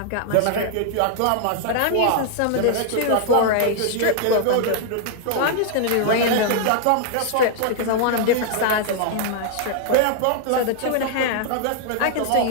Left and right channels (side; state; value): both; different; correlation -0.01